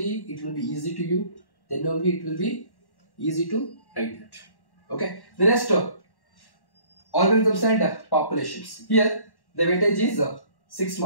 it will be easy to you. Then only it will be easy to write that. Okay, the next organisms and populations. Here the weightage is 6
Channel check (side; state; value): right; late; 1.1 ms